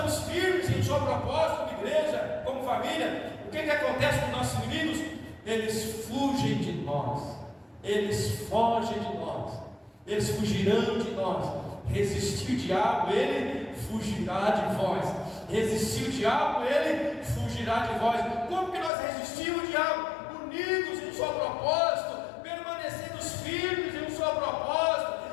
firmes em sua proposta, como igreja, como família, o que acontece com os nossos inimigos? Eles fugem de nós, eles fogem de nós, eles fugirão de nós. Resistir o diabo, ele fugirá de vós. Resistir o diabo, ele fugirá de vós. Como que nós resistimos o diabo? Unidos em seu propósito, permanecendo firmes em seu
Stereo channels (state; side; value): drops out; right; at 18.9 s